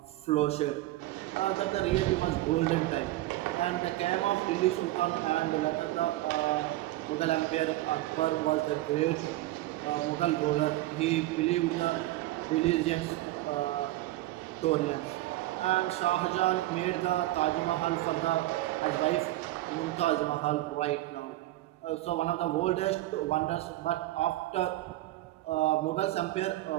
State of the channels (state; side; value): quieter; left; 16.8 dB